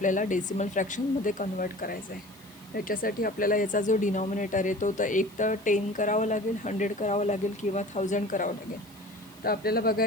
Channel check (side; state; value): left; noise; hiss, 25 dB below the sound